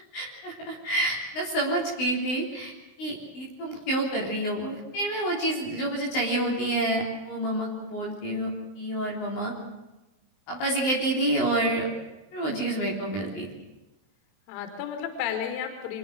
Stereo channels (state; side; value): late; right; 19 ms